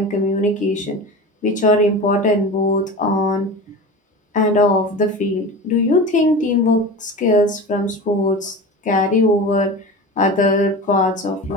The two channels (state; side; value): normal; both; correlation 0.31